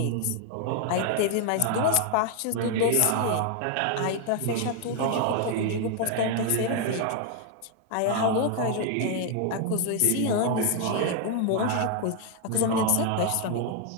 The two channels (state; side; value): different; both; correlation 0.00